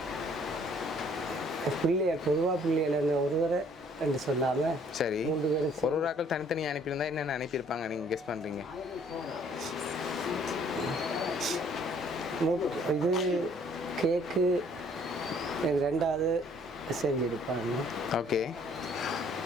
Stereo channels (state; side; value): normal; both; correlation 0.60